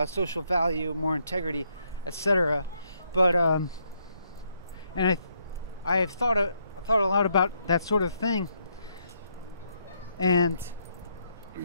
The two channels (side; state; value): both; inverted; correlation -0.75